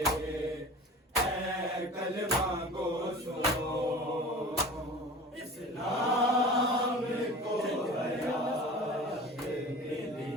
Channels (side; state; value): both; normal; correlation 0.38